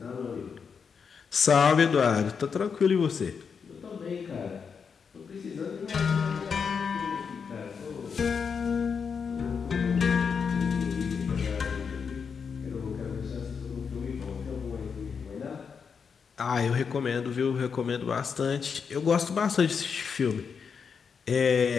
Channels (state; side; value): quieter; right; 6.1 dB